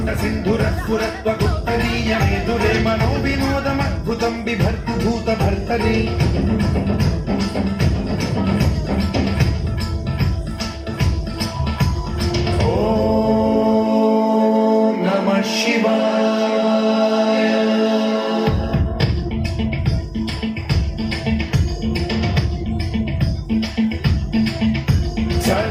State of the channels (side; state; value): both; identical; correlation 1.00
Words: सिन्धुरस्फुरत्वगुप्तनीय मेदुरे मनोविनोदमद्भुतं बिभर्तु भूतभर्तरि ॐ नमः शिवाय।